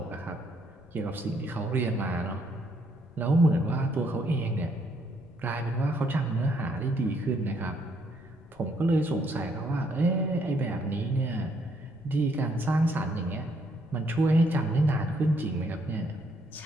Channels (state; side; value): noise; left; rumble, 25 dB below the sound